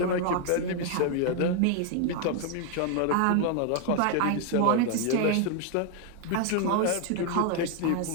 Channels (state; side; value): different; both; correlation 0.01